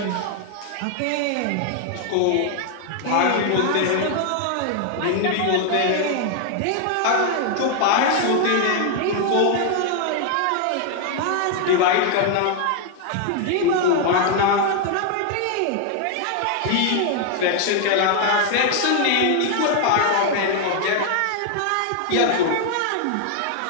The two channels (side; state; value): both; different; correlation 0.00